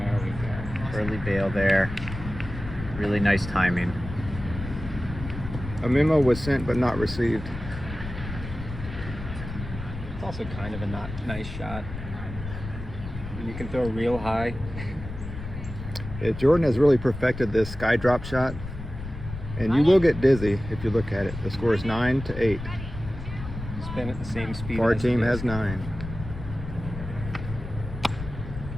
we go. Early bail there. Really nice timing. A memo was sent but not received. It's also kind of a not nice shot. You can throw real high. Jordan has really perfected this sky drop shot, and you will get dizzy if you look at it. The score is 9-8. Spin at the same speed. Far as the team disc. has 9.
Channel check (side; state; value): left; noise; rumble, 9 dB below the sound